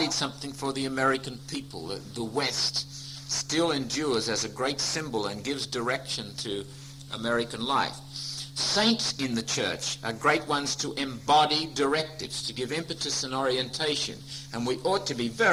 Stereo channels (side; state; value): both; identical; correlation 1.00